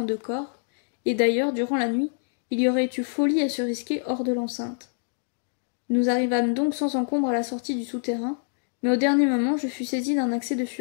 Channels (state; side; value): silent; right; digital silence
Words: deux corps, et d'ailleurs, durant la nuit, il y aurait eu folie à se risquer hors de l'enceinte. Nous arrivâmes donc sans encombre à la sortie du souterrain, mais au dernier moment je fus saisi d'un accès de